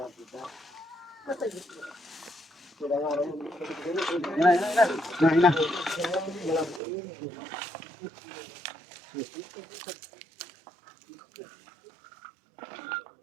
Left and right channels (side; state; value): left; drops out; at 6.8 s